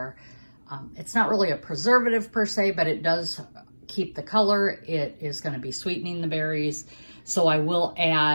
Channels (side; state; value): both; inverted; correlation -1.00